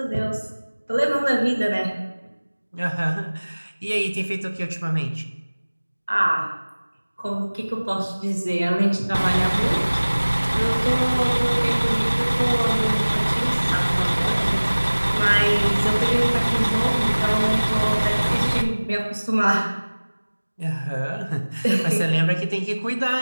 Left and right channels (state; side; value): inverted; both; correlation -1.00